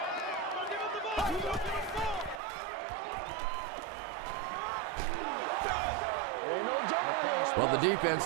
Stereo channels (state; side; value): drops out; left; at 2.4 s